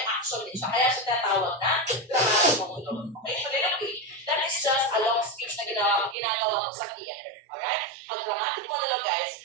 action din siya. Kaya siya tinatawag na dramatic monologue. Okay, soliloquy, that is just a long speech na ginagawa mo sa theater. Alright? Ang dramatic monologue guys,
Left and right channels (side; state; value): left; drops out; at 6.2 s